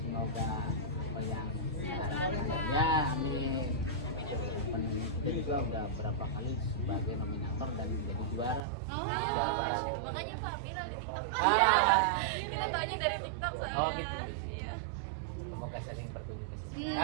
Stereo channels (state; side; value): drops out; left; at 8.6 s